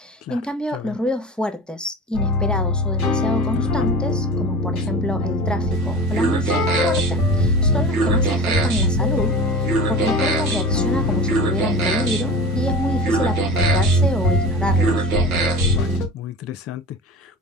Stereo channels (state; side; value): normal; both; correlation 0.33